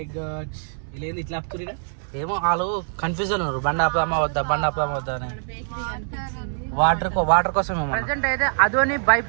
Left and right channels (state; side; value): silent; left; digital silence